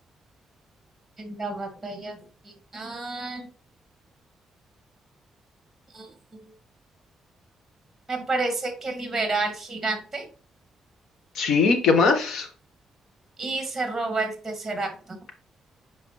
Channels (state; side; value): normal; both; correlation 0.62